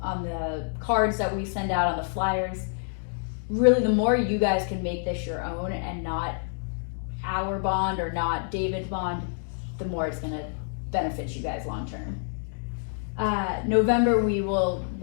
cards that we send out, on the flyers, really the more you guys can make this your own and not our bond or not David's bond, the more it's going to benefit you guys long term. November, we will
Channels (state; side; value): silent; right; digital silence